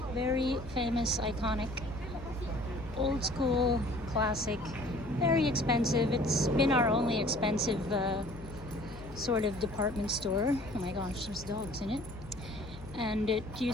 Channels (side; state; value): left; noise; hum, 15 dB below the sound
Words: very famous, iconic, old school, classic, very expensive. It's been our only expensive sort of department store. Oh my gosh, there's dogs in it. And it